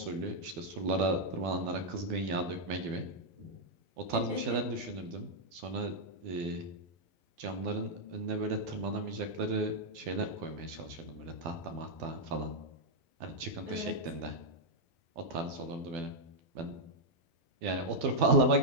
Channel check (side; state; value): left; late; 12 ms